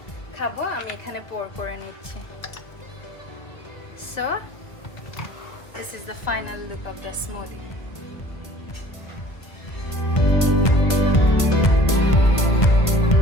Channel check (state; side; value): late; right; 1.5 ms